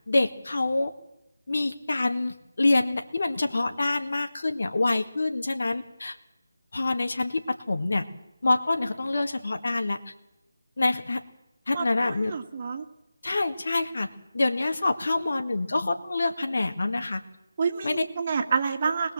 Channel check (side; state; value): both; inverted; correlation -0.95